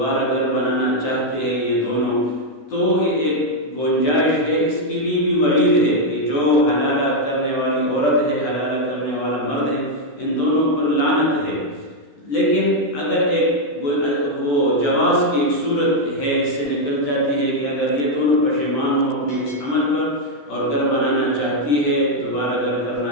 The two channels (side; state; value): right; late; 14 ms